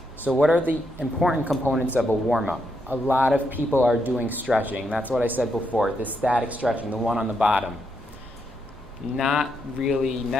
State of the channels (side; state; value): both; normal; correlation 0.80